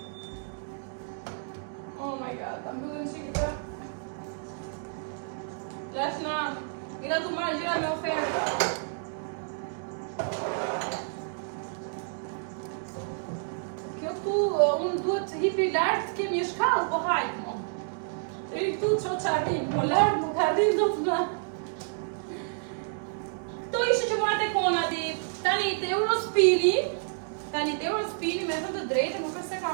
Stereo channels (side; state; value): left; silent; digital silence